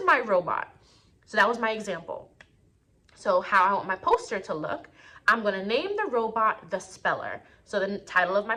my robot. So that was my example. So how I want my poster to look, I'm going to name the robot The Speller. So the title of my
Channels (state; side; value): identical; both; correlation 1.00